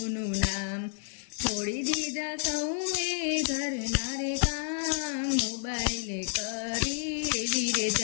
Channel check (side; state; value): right; silent; 58 dB below the other